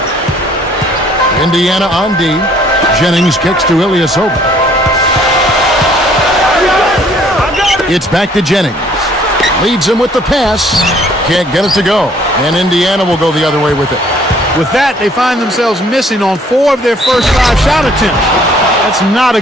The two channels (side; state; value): both; normal; correlation 0.60